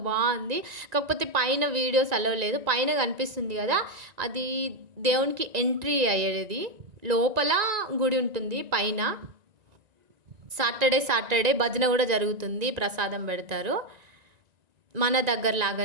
బాగుంది. కాకపోతే పైన వీడియోస్ అలౌ లేదు. పైన కనిపిస్తుంది కదా, అది దేవునికి ఎంట్రీ అయ్యేది. లోపల గుడి ఉంటుంది పైన. సాటర్డే భజన కూడా జరుగుతుంది, ప్రసాదం పెడతారు. మన దగ్గర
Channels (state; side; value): late; left; 1.9 ms